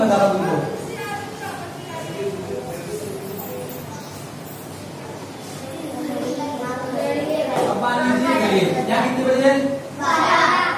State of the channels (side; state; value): both; identical; correlation 1.00